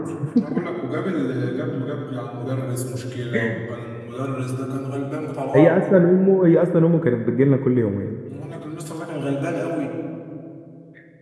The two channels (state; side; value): identical; both; correlation 1.00